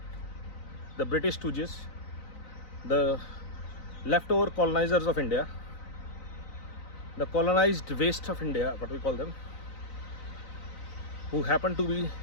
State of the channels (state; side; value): late; right; 3.9 ms